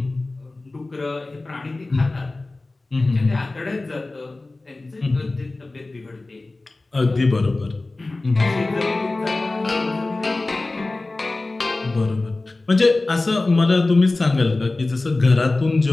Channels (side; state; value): right; quieter; 3.1 dB